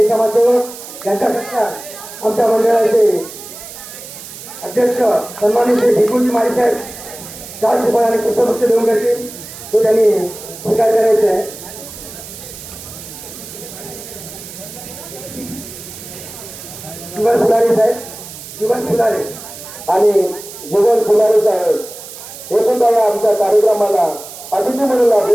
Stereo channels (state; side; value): noise; right; hiss, 14 dB below the sound